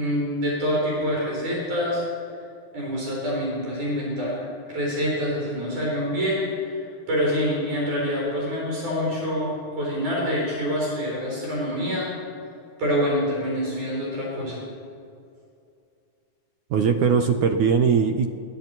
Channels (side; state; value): left; late; 9.7 ms